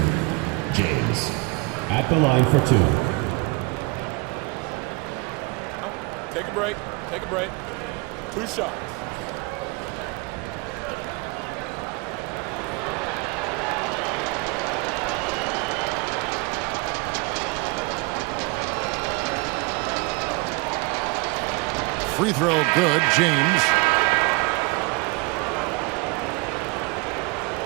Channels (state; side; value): quieter; left; 26.5 dB